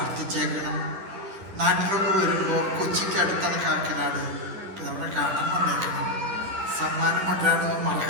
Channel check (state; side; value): late; left; 10 ms